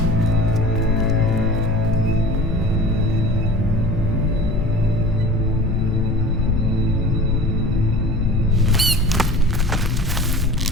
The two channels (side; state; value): both; normal; correlation 0.40